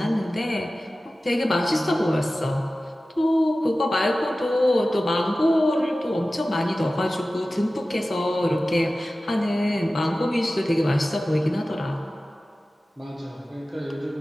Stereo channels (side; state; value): both; normal; correlation 0.96